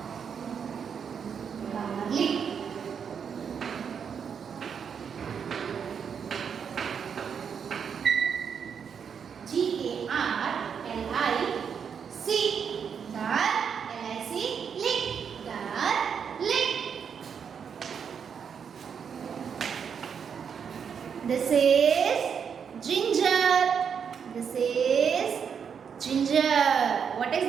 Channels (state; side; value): quieter; left; 7.0 dB